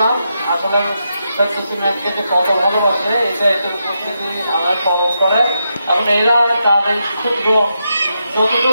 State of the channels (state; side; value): inverted; both; correlation -0.84